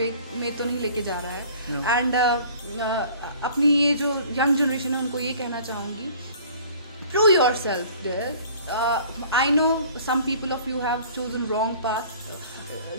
में तो नहीं लेके जा रहा है। एंड अपनी ये जो यंग जनरेशन है उनको ये कहना चाहूँगी, prove yourself. I know some people of you have chosen wrong path,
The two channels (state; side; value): inverted; both; correlation -0.49